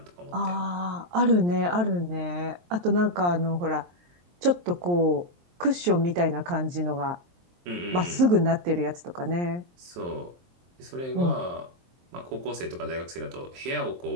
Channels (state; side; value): late; left; 23 ms